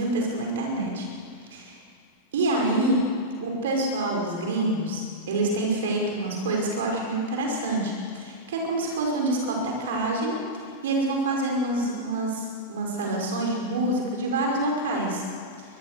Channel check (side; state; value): both; normal; correlation -0.12